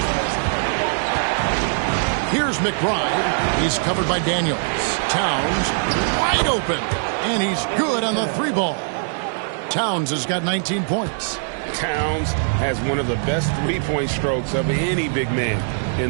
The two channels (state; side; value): silent; left; digital silence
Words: Here's McBride. He's covered by Daniels. Towns wide open. And he's good on the 3 ball. Towns has got 19 points. Towns has one of the best 3-point strokes of any big man